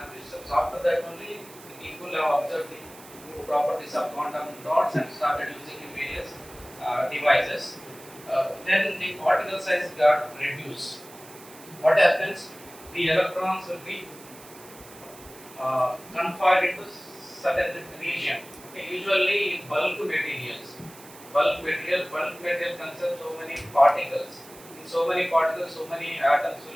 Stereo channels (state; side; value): noise; right; hiss, 20 dB below the sound